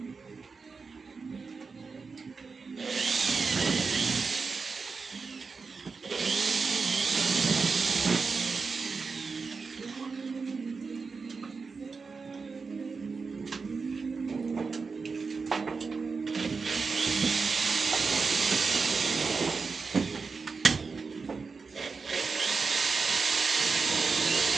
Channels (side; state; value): left; quieter; 4.7 dB